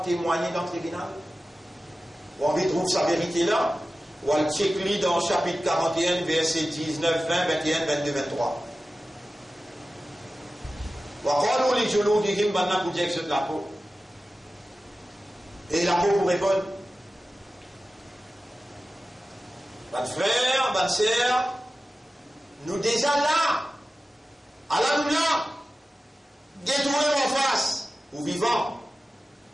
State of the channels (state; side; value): normal; both; correlation 0.95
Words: témoigner dans le tribunal. On trouve sa vérité là, ou on check dans le chapitre 41, verset 19, 20, 21, 22, 23. Et la peau pour répondre. Votre frère, votre sœur, nous déjà là, Allah nous là, détruire en face, ou vivant.